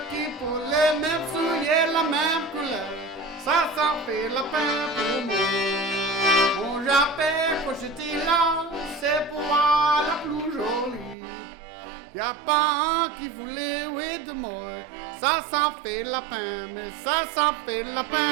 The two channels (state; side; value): drops out; left; at 11.2 s